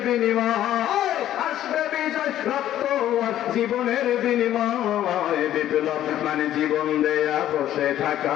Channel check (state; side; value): quieter; right; 12.2 dB